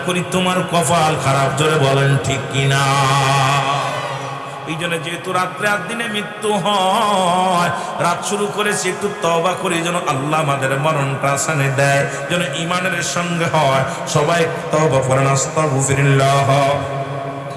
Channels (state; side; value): identical; both; correlation 1.00